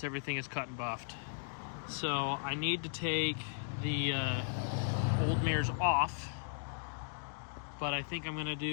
everything is cut and buffed. So I need to take the old mirrors off, but I think I'm gonna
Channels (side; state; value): right; silent; digital silence